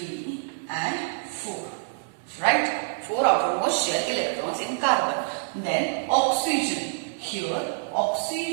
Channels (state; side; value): silent; left; 61 dB below the other